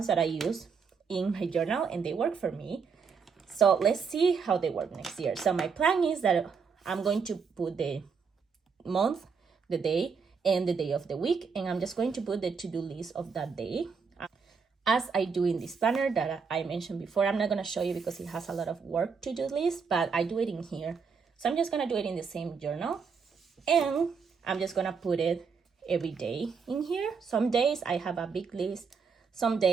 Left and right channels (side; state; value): left; quieter; 5.6 dB